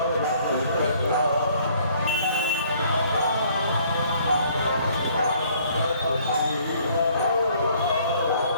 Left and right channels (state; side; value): inverted; both; correlation -0.60